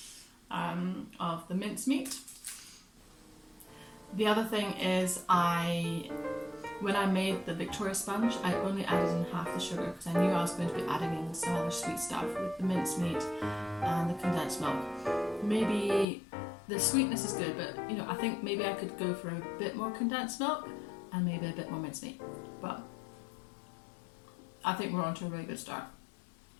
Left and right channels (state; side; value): drops out; right; at 16.1 s